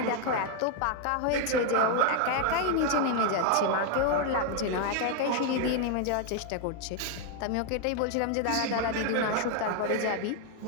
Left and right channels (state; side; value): different; both; correlation 0.01